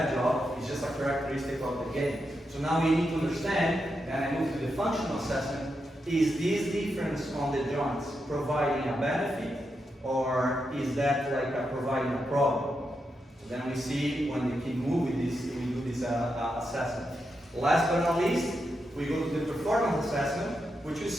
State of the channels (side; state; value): both; normal; correlation 0.85